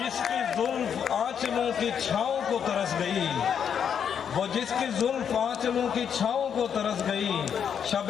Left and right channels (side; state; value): right; quieter; 7.9 dB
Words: जुल्फ आंचलों की छाँव को तरस गई, वो जिसकी जुल्फ आंचलों की छाँव को तरस गई,